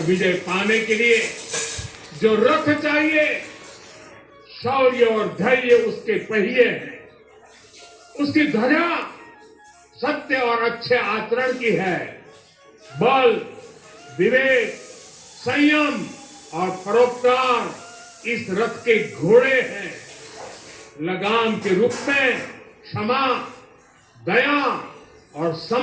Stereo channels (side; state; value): both; identical; correlation 1.00